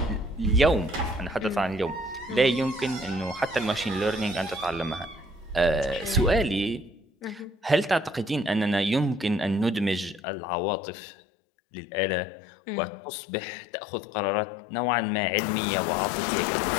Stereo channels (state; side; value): drops out; right; at 10.2 s